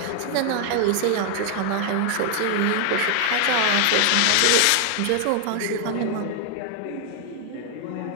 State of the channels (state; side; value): different; both; correlation 0.00